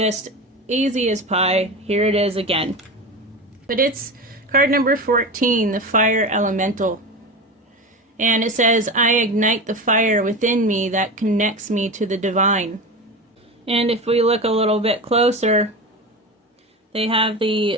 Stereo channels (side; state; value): both; normal; correlation 0.25